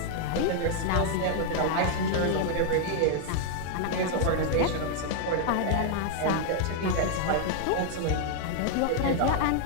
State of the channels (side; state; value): both; different; correlation 0.00